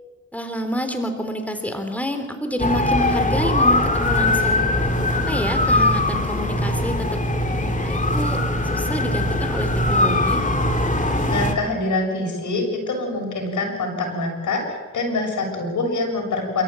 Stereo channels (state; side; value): normal; both; correlation 0.13